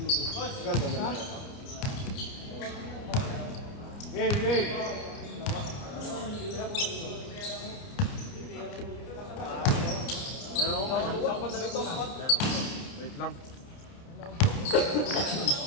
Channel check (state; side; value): late; right; 29 ms